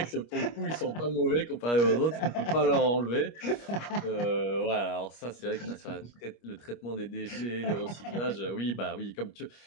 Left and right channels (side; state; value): right; late; 25 ms